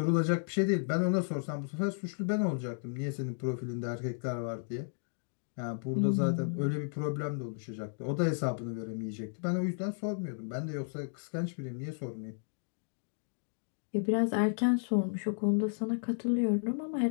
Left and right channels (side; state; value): right; silent; digital silence